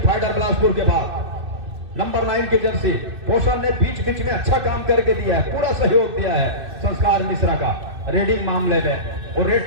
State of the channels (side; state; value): left; late; 2.6 ms